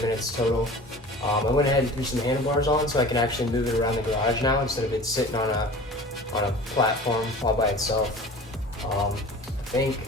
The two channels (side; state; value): both; normal; correlation 0.40